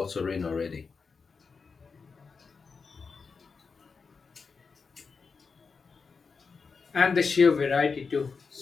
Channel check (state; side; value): quieter; right; 5.0 dB